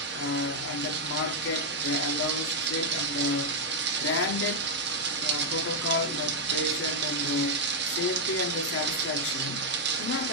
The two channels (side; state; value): both; normal; correlation -0.02